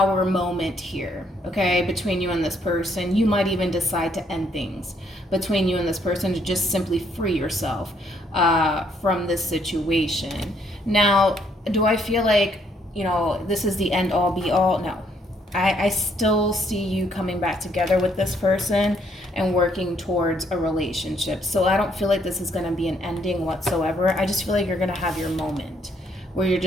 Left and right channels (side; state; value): both; normal; correlation 0.69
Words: moment here, okay, between you and this person. You might even decide to end things between you and this person to just simply free yourself from this situation. Now, do I feel like, you know, this is the end all be all? No. I still see you coming back together with this person and working towards a relationship. So I don't feel like this is going to be an ending whatsoever. I just feel like you're going to have your moment where you're